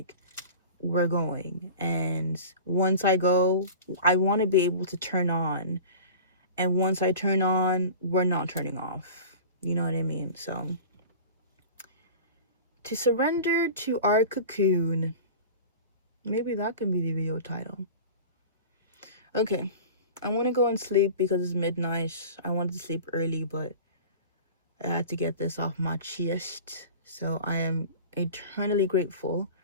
we're going. And once I go, I want to be able to turn on. And once I turn on, we're not turning off. You know what I mean? So, to surrender to our cocoon. Maybe that can be the video title. Okay. I want to go and sleep because it's midnight. I wanted to sleep early, but I had to get this off my chest. So I am eternally grateful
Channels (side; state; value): both; inverted; correlation -0.37